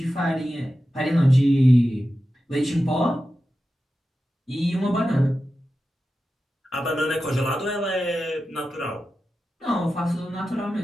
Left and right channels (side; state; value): both; normal; correlation 0.92